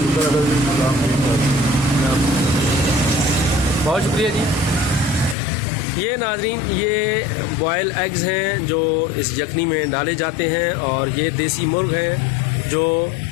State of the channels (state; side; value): drops out; right; at 5.4 s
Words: है। बहुत शुक्रिया जी। ये नाज़रीन, ये बॉयल एग्स हैं जो इस यखनी में डाले जाते हैं, और ये देसी मुर्ग हैं जो